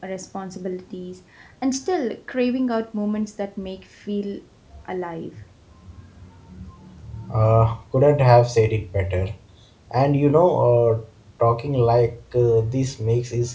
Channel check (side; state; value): both; identical; correlation 1.00